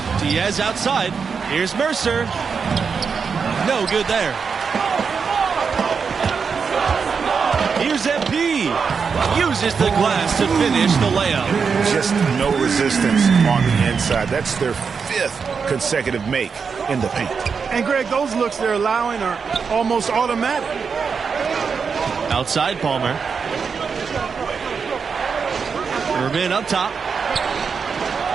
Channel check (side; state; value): left; quieter; 5.8 dB